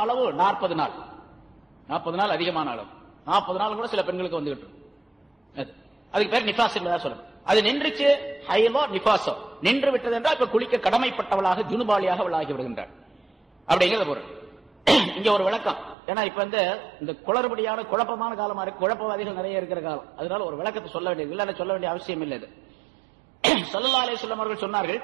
அளவு 40 நாள். 40 நாள் அதிகமான அளவு. 40 நாள் கூட சில பெண்களுக்கு வந்துகிட்டு அதுக்கு பேர் நிஃபாஸ் என்பதா சொல்லணும். அது நின்றுச்சு, ஹைலோ நிஃபாஸோ நின்று விட்டது என்றால் இப்ப குளிக்க கடமைப்பட்டவளாக ஜுனுபாலியாக அவள் ஆகி விடுகின்றாள் அப்படிங்கிறது பொருள். இங்க ஒரு விளக்கம், ஏன்னா இப்ப இந்த குளறுபடியான குழப்பமான காலமா இருக்கு, குழப்பவாதிகள் நிறைய இருக்கிற காலம், அதனால ஒரு விளக்கத்தை சொல்ல வேண்டியது இல்ல, சொல்ல வேண்டிய அவசியம் இல்லை. இது ஸல்லல்லாஹு அலைஹி வஸல்லம் அவர்கள் சொன்னார்கள்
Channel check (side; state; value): left; drops out; at 16.0 s